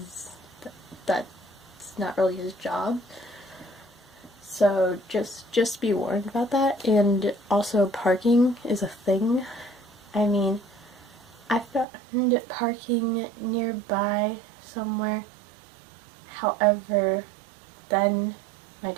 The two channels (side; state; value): left; drops out; at 11.9 s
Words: that's not really his job. So just be warned about that. And also, parking is a thing. I mean, I found parking nearby somewhere. However, then my